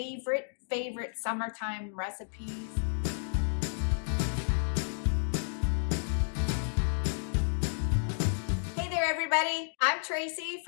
summertime recipes. Hey there everybody, I'm Tracy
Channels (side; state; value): right; silent; digital silence